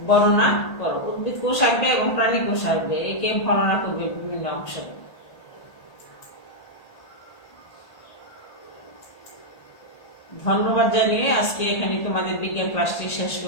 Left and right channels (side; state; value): right; late; 1.8 ms